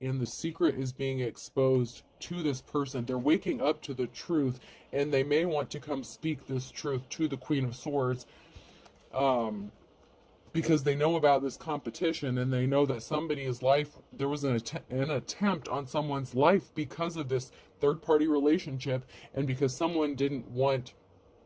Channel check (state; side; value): identical; both; correlation 1.00